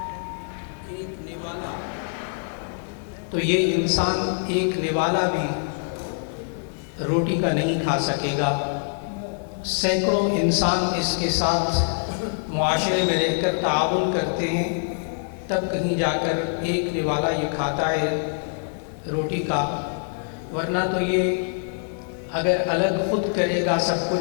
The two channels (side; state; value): right; silent; digital silence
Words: ایک نوالا بھی روٹی کا نہیں کھا سکے گا۔ سینکڑوں انسان اس کے ساتھ معاشرے میں رہ کر تعاون کرتے ہیں، تب کہیں جا کر ایک نوالا یہ کھاتا ہے روٹی کا، ورنہ تو یہ اگر الگ خود کرے گا سب